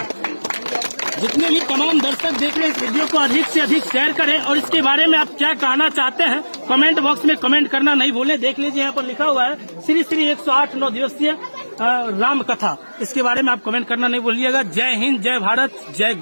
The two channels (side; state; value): both; inverted; correlation -1.00